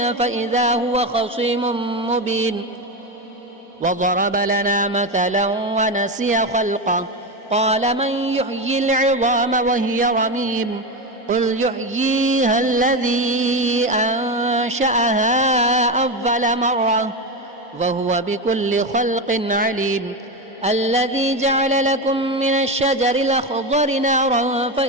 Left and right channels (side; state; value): both; normal; correlation 0.15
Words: فإذا هو خصيم مبين وضرب لنا مثلا ونسي خلقه قال من يحيي العظام وهي رميم قل يحييها الذي أنشأها أول مرة وهو بكل خلق عليم الذي جعل لكم من الشجر الأخضر نارا